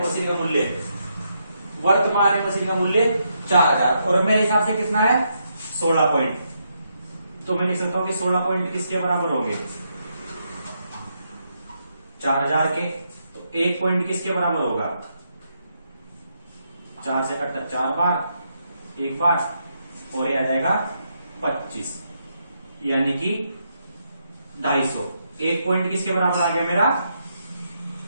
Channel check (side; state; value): both; inverted; correlation -0.79